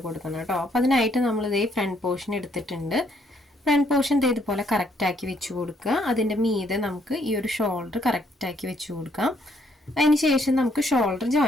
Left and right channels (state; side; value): normal; both; correlation 0.70